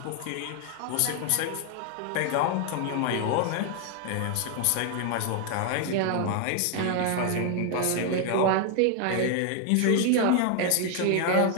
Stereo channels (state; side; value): different; both; correlation 0.00